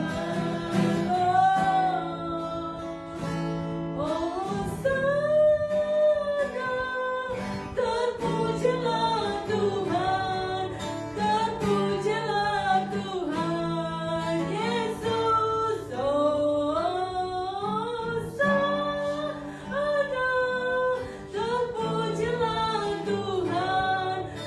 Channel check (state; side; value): identical; both; correlation 1.00